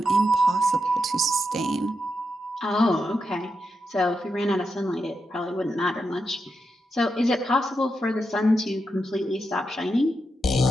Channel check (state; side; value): normal; both; correlation 0.86